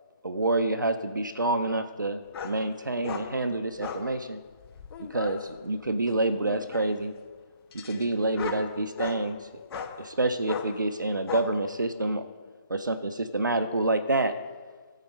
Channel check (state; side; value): inverted; both; correlation -0.62